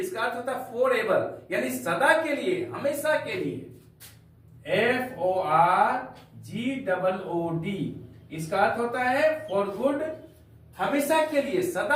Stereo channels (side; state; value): both; identical; correlation 1.00